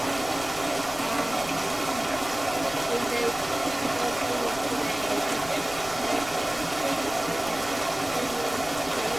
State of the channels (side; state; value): left; noise; rumble, 16 dB below the sound